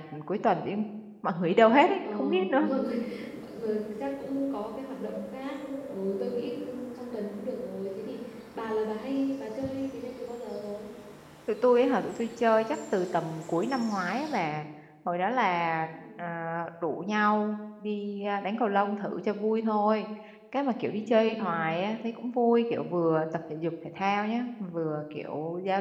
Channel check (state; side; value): identical; both; correlation 1.00